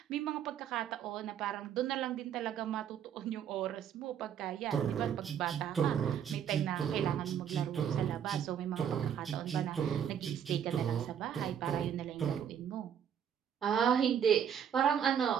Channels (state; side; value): quieter; left; 8.8 dB